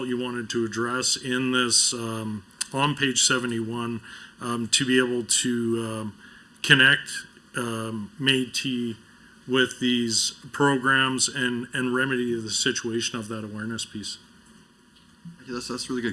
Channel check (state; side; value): identical; both; correlation 1.00